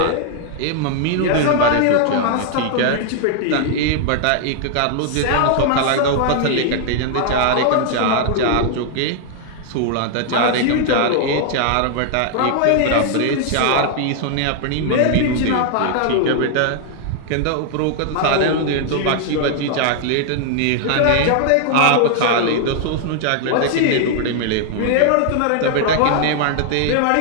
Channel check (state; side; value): different; both; correlation 0.00